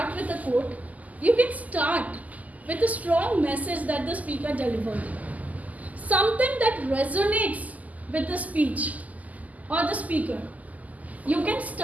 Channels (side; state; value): left; late; 0.077 ms